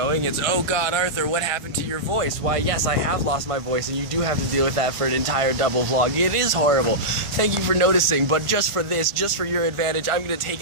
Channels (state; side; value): late; left; 1.4 ms